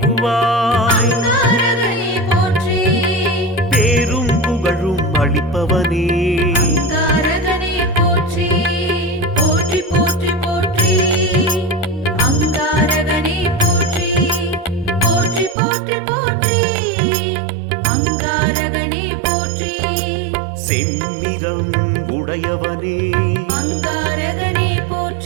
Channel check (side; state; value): left; drops out; at 15.6 s